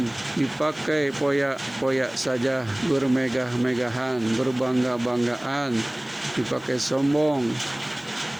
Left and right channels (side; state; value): left; noise; hiss, 29 dB below the sound